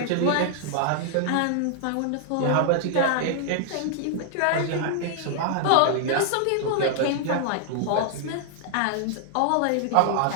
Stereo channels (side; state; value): both; different; correlation 0.00